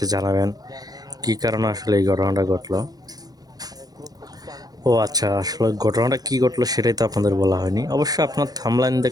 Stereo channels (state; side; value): late; left; 0.19 ms